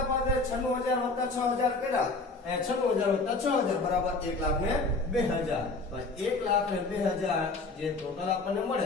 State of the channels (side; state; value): right; quieter; 3.5 dB